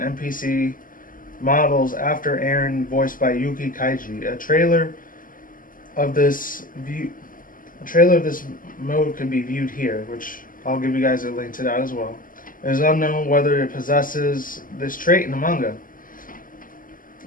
models after Aaron, voiced by Yuki Kaiji. A trailer of this mode can be viewed here, which I'll give you guys a link to that as well. It is unknown whether it possesses this trait in the manga.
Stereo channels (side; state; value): right; late; 0.40 ms